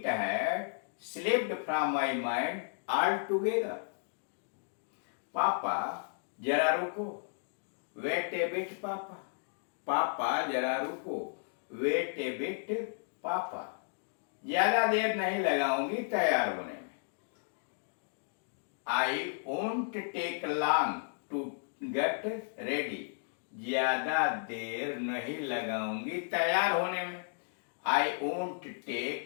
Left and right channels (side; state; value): right; silent; digital silence